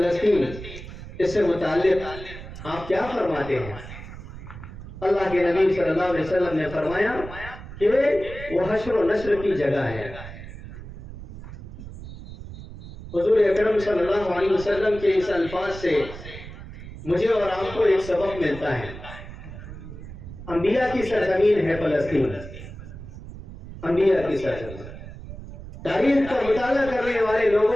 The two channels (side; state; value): right; noise; rumble, 13 dB below the sound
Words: اس سے متعلق آپ کیا فرماتے ہیں؟ اللہ کے نبی صلی اللہ علیہ وسلم نے فرمایا کہ وہ حشر و نشر کی جگہ ہے۔ حضور اکرم صلی اللہ علیہ وسلم کے اس الفاظ سے مجھے اور آپ کو ایک سبق ملتا ہے۔ انبیاء کی سرزمین ہے فلسطین، انبیاء کی سرزمین، تاریخ کا مطالعہ کرنے والے